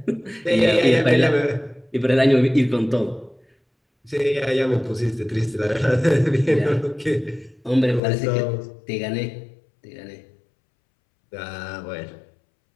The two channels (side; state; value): right; drops out; at 8.0 s